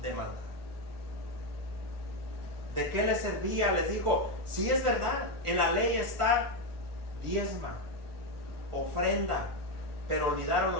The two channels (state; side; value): late; left; 1.4 ms